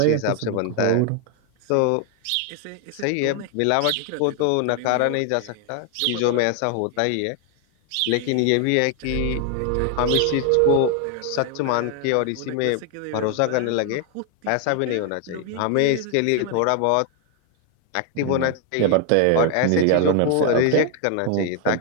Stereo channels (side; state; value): both; different; correlation 0.00